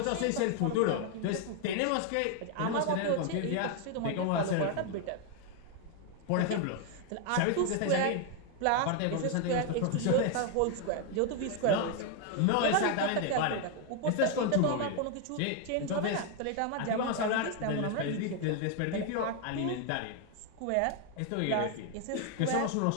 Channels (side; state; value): both; different; correlation 0.01